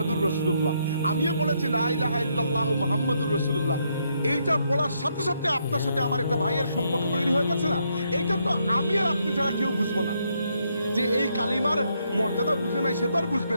রাসূলুল্লাহ, আমিও পড়েছি লা ইলাহা ইল্লাল্লাহু মুহাম্মাদুর রাসূলুল্লাহ। এইটা পড়ার সাথে সাথে আপনার সাথে আমার একটা ভাইয়ের সম্পর্ক তৈরি হয়ে গেছে না? এইটা তো আমি আর আপনি ছাড়া কেউ বুঝবো না। যে এই কালিমার মর্যাদা বুঝে নাই, সে তো আর বুঝবে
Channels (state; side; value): inverted; both; correlation -0.76